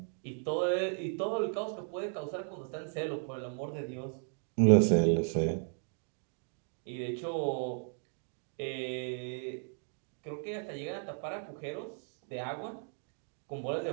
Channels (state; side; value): silent; left; 54 dB below the other